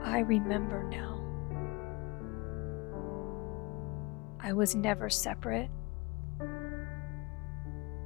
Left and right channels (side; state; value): right; quieter; 26.0 dB